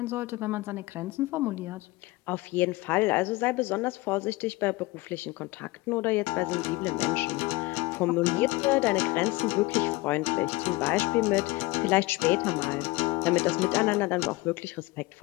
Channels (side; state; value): right; quieter; 22.0 dB